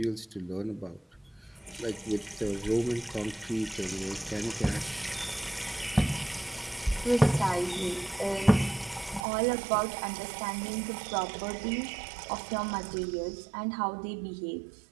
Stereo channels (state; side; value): drops out; left; at 9.2 s